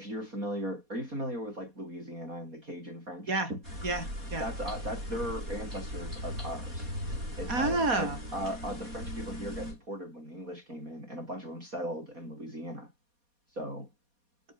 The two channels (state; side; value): late; left; 4.2 ms